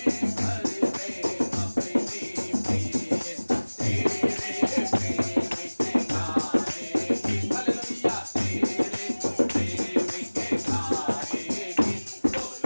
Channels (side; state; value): both; inverted; correlation -1.00